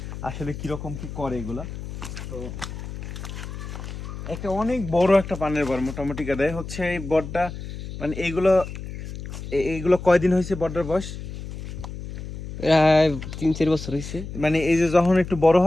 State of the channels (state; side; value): noise; left; hum, 9 dB below the sound